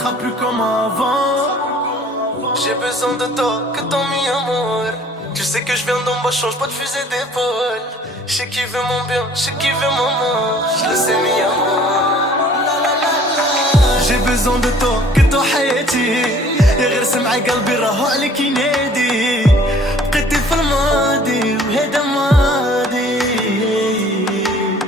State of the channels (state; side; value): normal; both; correlation 0.53